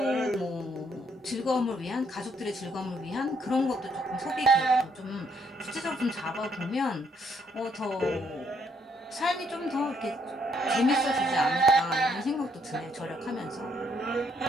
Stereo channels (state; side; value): normal; both; correlation 0.70